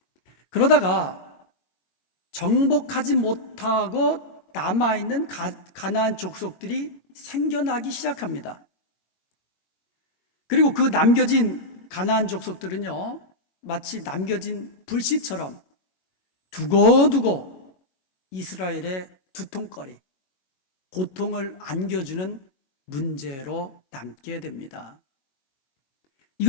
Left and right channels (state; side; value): late; right; 22 ms